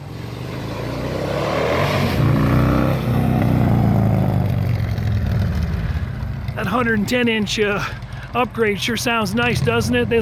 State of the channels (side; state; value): both; identical; correlation 1.00